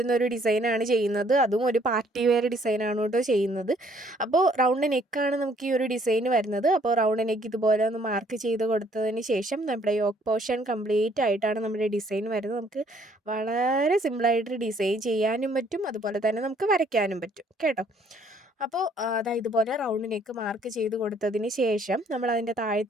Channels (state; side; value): normal; both; correlation 0.63